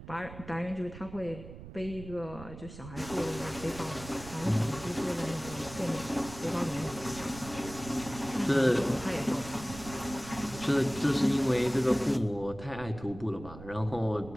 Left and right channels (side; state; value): right; noise; rumble, 14 dB below the sound